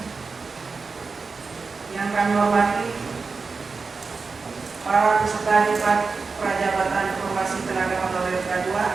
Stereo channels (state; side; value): quieter; left; 4.5 dB